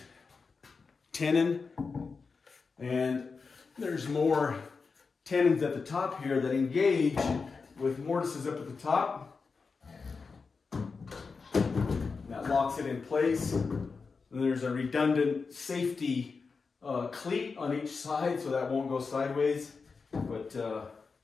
tenon. And there's more tenons at the top here that engage with mortises up at the top. That locks it in place. And there's a redundant safety cleat on each side so that won't go sideways. But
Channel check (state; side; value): quieter; right; 4.8 dB